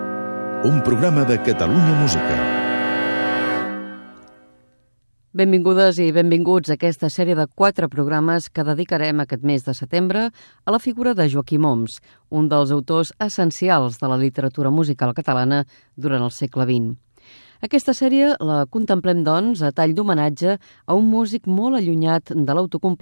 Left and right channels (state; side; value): inverted; both; correlation -1.00